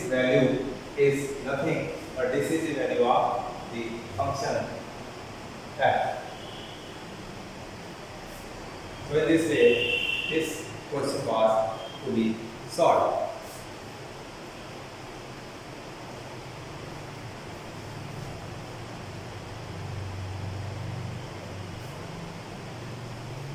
value is nothing but this is the value of the function f. So in this way, this question was to be solved.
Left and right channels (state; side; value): identical; both; correlation 1.00